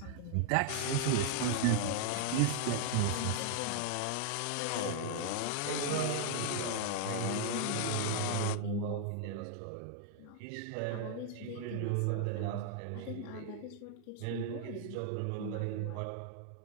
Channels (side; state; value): both; different; correlation 0.00